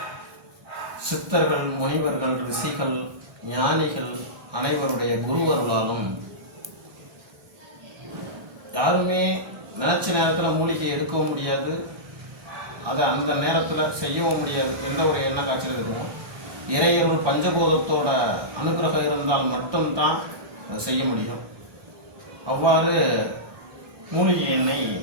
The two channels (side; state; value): left; late; 1.2 ms